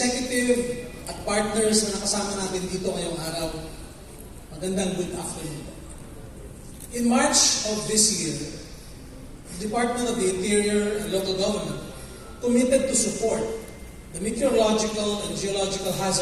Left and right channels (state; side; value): identical; both; correlation 1.00